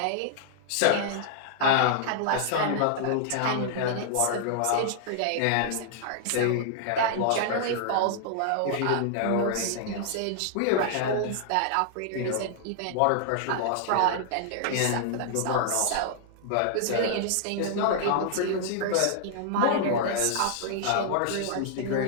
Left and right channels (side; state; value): both; different; correlation -0.01